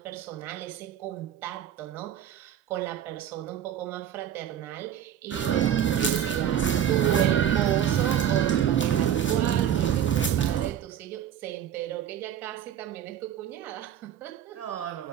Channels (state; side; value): quieter; left; 9.8 dB